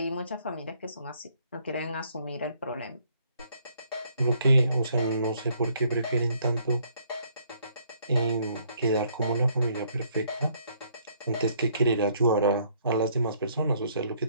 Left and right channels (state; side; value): inverted; both; correlation -0.66